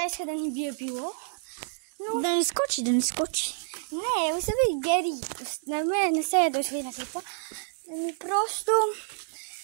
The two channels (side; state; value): left; silent; digital silence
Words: иска да ни бие пило. Но... Да ни скочи. Не, остави Гери. Не се ядосви на това. Просто...